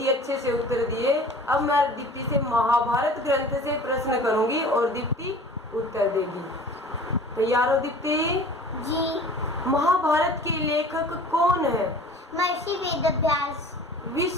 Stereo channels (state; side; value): normal; both; correlation 0.44